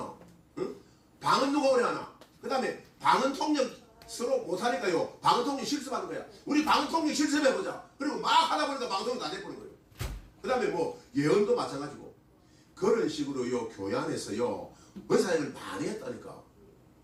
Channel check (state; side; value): identical; both; correlation 1.00